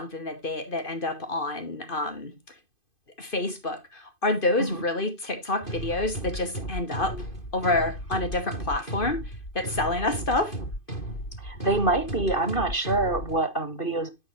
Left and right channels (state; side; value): late; right; 2.5 ms